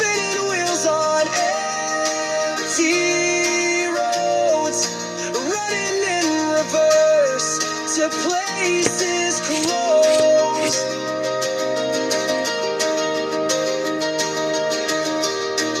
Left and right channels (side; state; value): both; identical; correlation 1.00